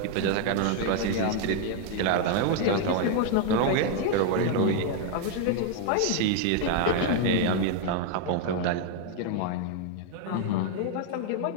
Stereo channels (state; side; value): different; both; correlation 0.00